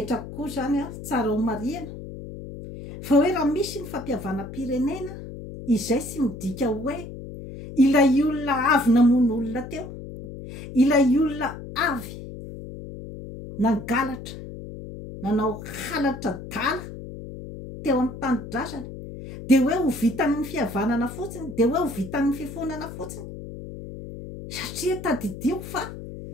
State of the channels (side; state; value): left; noise; hum, 11 dB below the sound